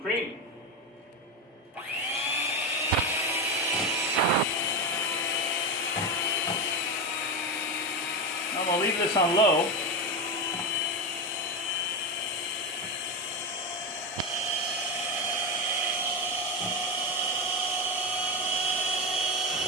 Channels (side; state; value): both; normal; correlation 0.14